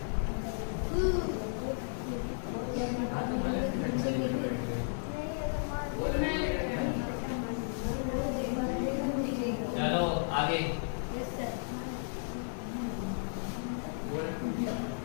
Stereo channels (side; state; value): right; silent; digital silence